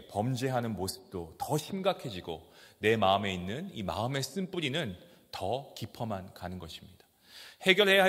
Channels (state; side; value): identical; both; correlation 1.00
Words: 범죄하는 모습도 더 심각해지고 내 마음에 있는 이 마음의 쓴뿌리는 더 깊어만 가는 것입니다. 해결해야